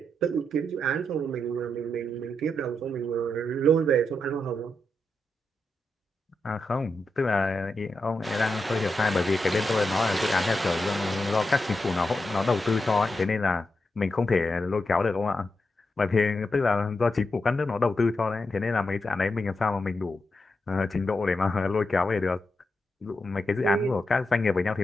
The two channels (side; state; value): both; normal; correlation 0.86